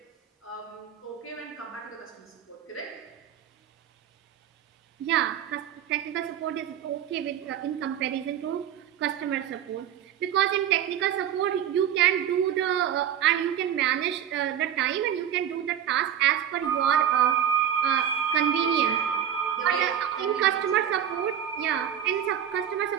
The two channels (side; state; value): left; quieter; 9.7 dB